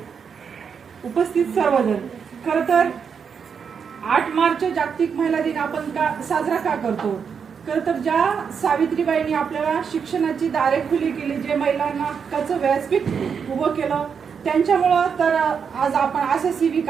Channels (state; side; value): quieter; left; 6.6 dB